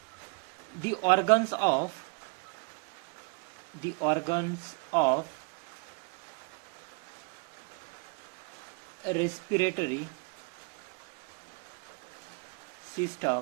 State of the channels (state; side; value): quieter; left; 35.1 dB